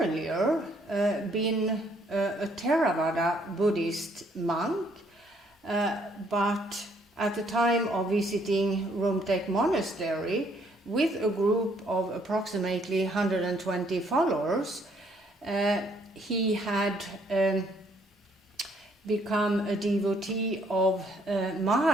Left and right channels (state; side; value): normal; both; correlation 0.67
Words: been a Theravada Buddhist monk, but at the time of visiting Rumtek Monastery with a group of approximately 120 followers, he had become a devotee of